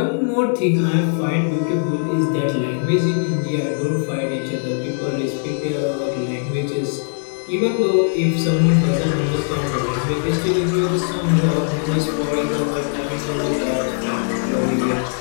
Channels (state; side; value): silent; right; 63 dB below the other